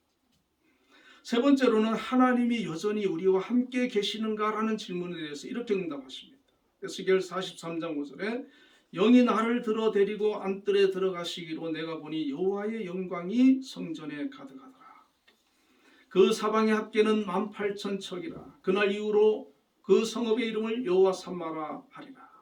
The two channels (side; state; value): both; identical; correlation 1.00